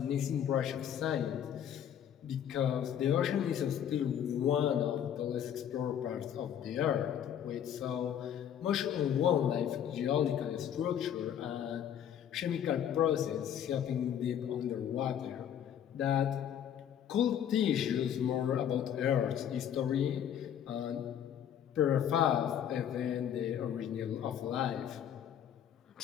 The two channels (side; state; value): right; quieter; 9.5 dB